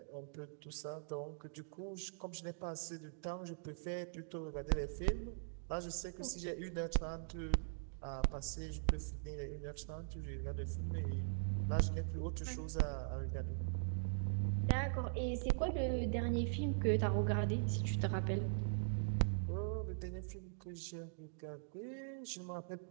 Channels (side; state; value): left; silent; digital silence